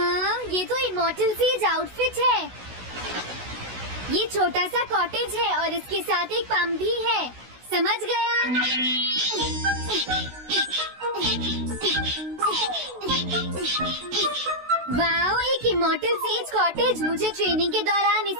ये तो इमॉर्टल सेज आउटफिट है। ये छोटा सा कॉटेज है और इसके साथ एक पंप भी है। समझ गया। वाओ, एक इमॉर्टल सेज कॉटेज। मुझे ट्रेनिंग के दौरान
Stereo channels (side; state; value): left; late; 16 ms